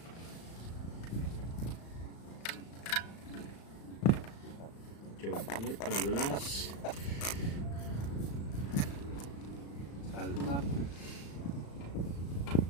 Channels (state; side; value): late; right; 35 ms